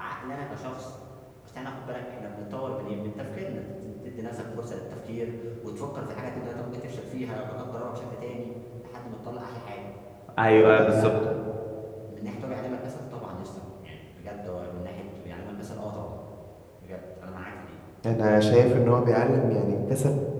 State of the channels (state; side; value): identical; both; correlation 1.00